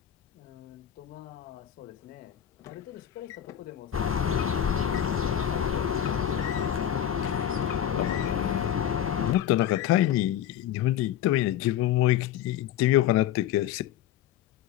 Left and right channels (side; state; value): right; quieter; 10.7 dB